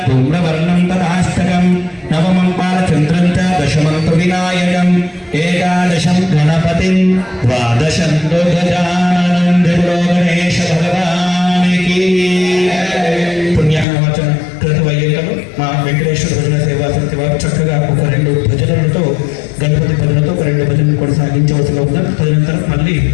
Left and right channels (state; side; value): drops out; right; at 13.9 s